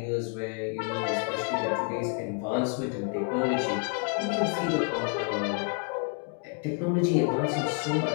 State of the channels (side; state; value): right; quieter; 37.0 dB